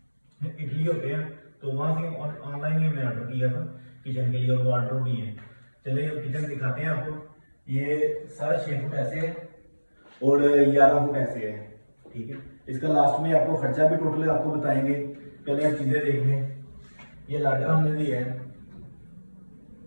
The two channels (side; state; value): both; inverted; correlation -1.00